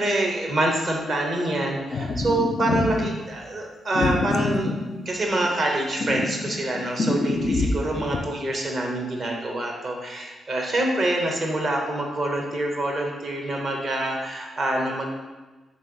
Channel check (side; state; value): both; normal; correlation 0.81